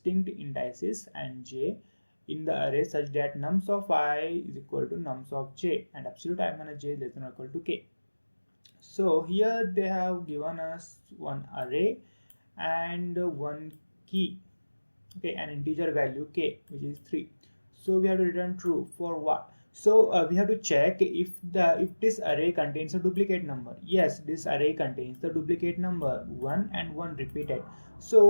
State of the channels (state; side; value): inverted; both; correlation -1.00